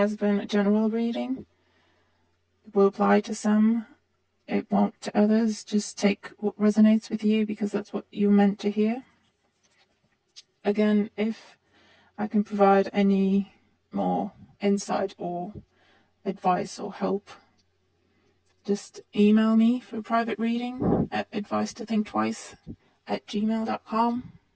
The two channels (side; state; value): both; identical; correlation 1.00